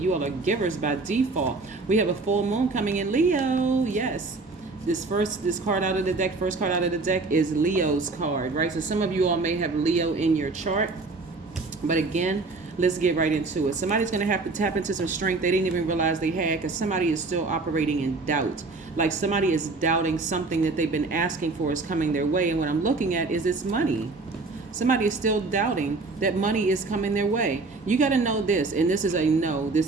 You all are givers by default. We have a full moon coming in Leo. Yes. This card out of the deck, first card out of the deck is Leo's card, right? So some of you all may have Leo in your chart. But again, let's get right into it. Somebody's going to have to tap into some strength they didn't even realize they had, because somebody is still operating in doubt. Like somebody is doubting something that they've been asking for is coming their way. And what I'm looking at is it's money. Somebody is still doubting that money is coming their way. You got to know this, and this is a no.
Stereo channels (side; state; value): left; quieter; 3.7 dB